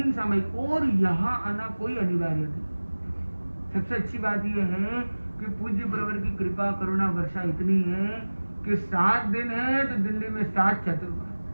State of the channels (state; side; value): inverted; both; correlation -1.00